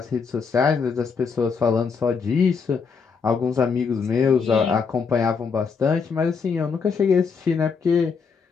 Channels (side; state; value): right; quieter; 5.5 dB